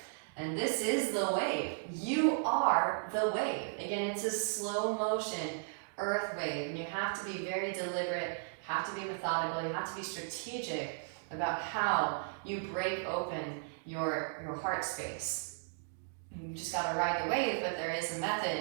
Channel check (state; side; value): silent; left; digital silence